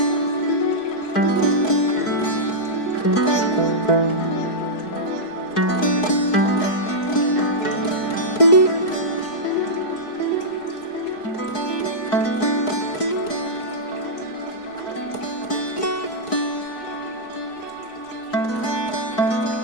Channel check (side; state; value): right; late; 4.6 ms